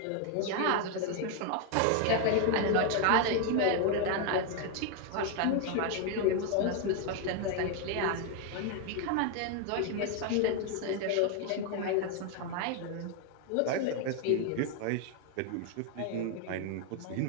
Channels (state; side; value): different; both; correlation 0.01